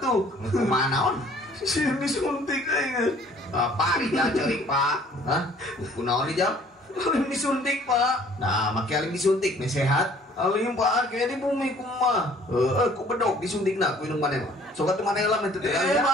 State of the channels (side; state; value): both; normal; correlation 0.56